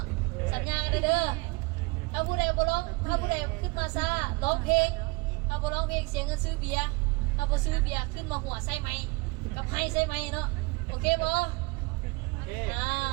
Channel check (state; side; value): quieter; left; 26.9 dB